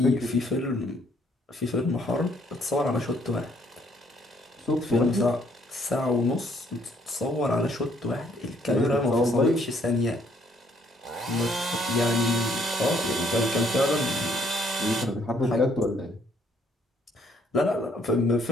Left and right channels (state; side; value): normal; both; correlation 0.67